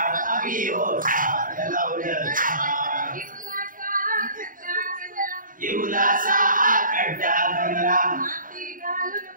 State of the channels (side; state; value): left; late; 0.39 ms